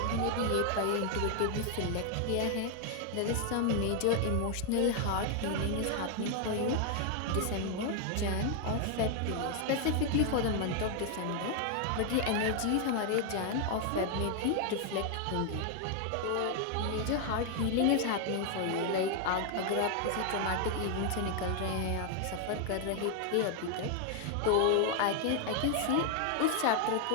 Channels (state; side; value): different; both; correlation 0.00